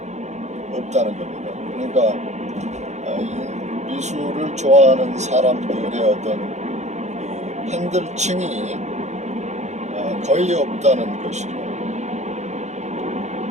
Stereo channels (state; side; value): late; left; 0.33 ms